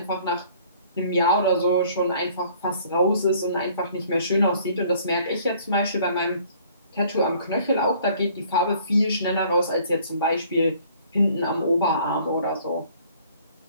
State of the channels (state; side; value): inverted; both; correlation -0.56